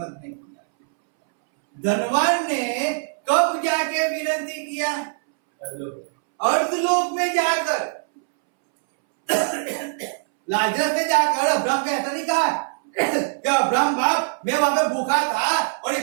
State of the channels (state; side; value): silent; left; 64 dB below the other